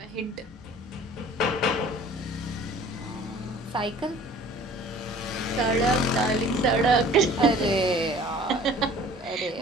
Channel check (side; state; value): both; normal; correlation 0.49